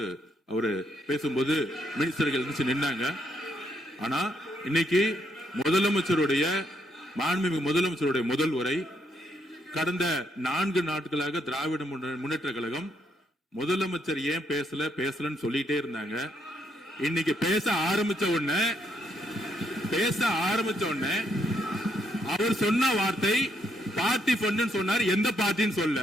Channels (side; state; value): both; normal; correlation 0.75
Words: அவரு பேசும்போது மினிஸ்டர்கள் இருந்துச்சு நின்னாங்க. ஆனா இன்னைக்கு மாண்புமிகு முதலமைச்சருடைய முதல் உரை கடந்த 4 நாட்களாக திராவிட முன்னேற்ற கழகம் முதலமைச்சர் ஏன் பேசலன்னு சொல்லிட்டே இருந்தாங்க. இன்னைக்கு பேச ஆரம்பிச்ச உடனே அவர் சொன்ன வார்த்தை பார்ட்டி ஃபண்ட் சொன்னார். எந்த பார்ட்டின்னு சொல்ல.